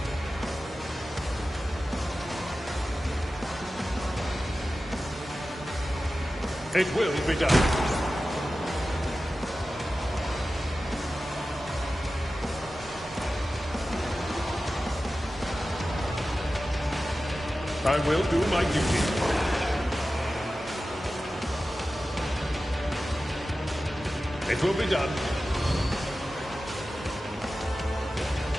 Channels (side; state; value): both; normal; correlation 0.94